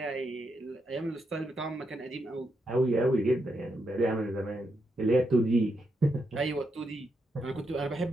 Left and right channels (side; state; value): both; normal; correlation 0.82